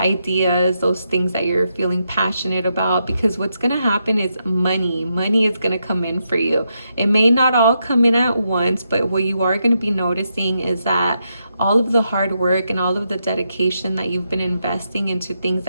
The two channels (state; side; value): inverted; both; correlation -0.82